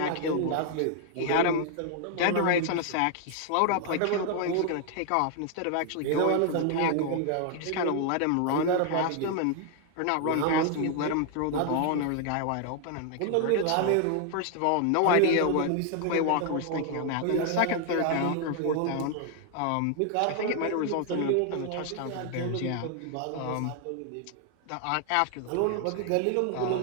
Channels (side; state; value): both; different; correlation 0.00